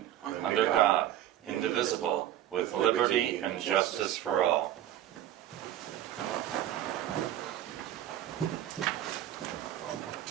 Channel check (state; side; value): quieter; left; 12.3 dB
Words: under God, indivisible, with liberty and justice for all.